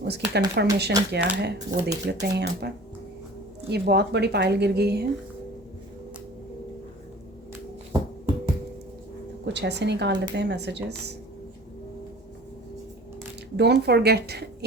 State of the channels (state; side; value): normal; both; correlation 0.44